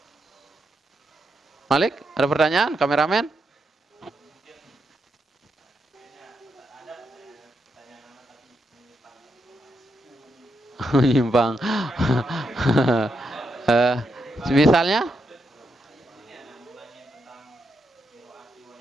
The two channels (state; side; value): normal; both; correlation 0.83